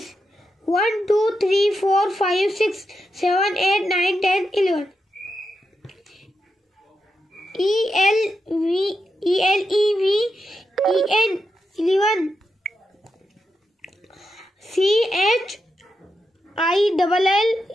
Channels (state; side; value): normal; both; correlation 0.86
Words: 1, 2, 3, 4, 5, 6, 7, 8, 9, 10, 11. E-L-E-V-E-N 11.